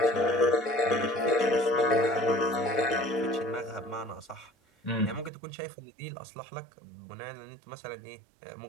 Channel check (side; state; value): left; drops out; at 5.3 s